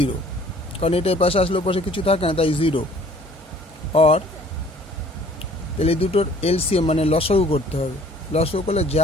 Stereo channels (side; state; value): both; normal; correlation 0.54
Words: কারণ এটাই পাশে আসলে পাশে কিছু থাকে না তাই 0 or তাহলে দুটোর এলসিএম মানে লসাগু করতে হবে লসাগু করলে